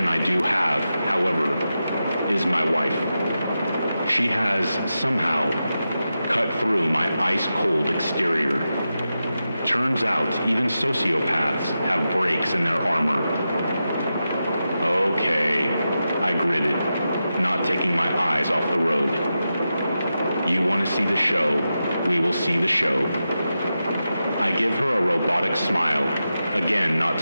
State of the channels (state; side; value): inverted; both; correlation -0.90